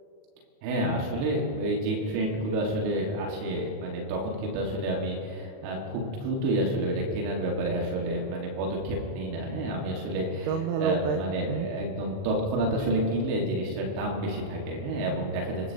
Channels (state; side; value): late; left; 37 ms